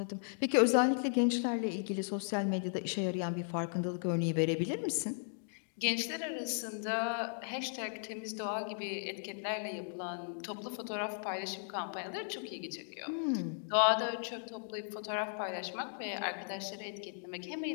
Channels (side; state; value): right; silent; digital silence